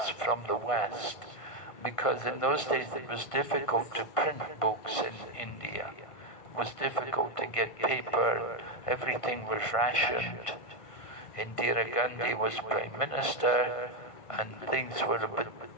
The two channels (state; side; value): late; right; 1.5 ms